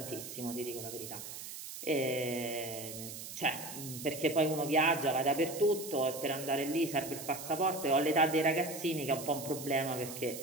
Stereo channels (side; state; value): right; noise; hiss, 10 dB below the sound